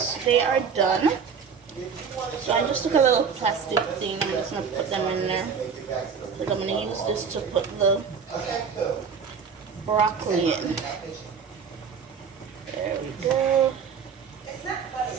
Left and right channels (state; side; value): quieter; left; 6.4 dB